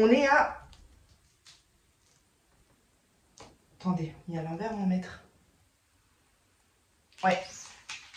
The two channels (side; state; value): both; identical; correlation 1.00